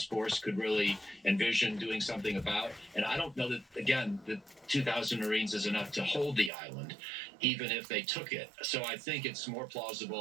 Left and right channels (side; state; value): left; drops out; at 6.5 s